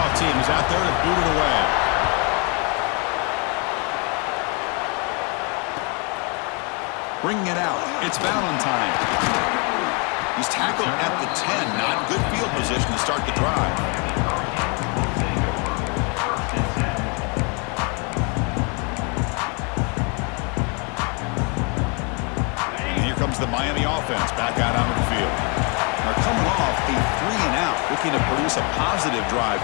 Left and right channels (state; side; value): quieter; right; 33.5 dB